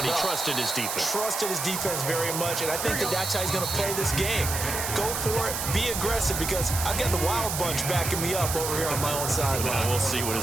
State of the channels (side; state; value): right; noise; hiss, 3 dB below the sound